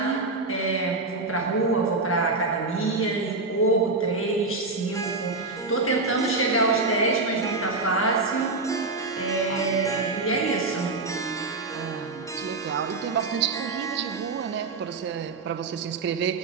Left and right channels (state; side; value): quieter; left; 3.5 dB